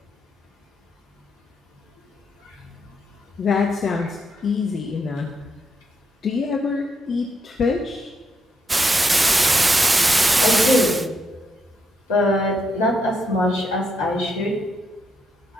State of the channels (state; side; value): normal; both; correlation 0.80